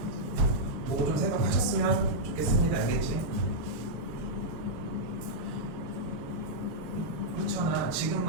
뭐 좀 생각하셨으면 좋겠습니다. 알겠지? 그렇잖아.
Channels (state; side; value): late; left; 6.9 ms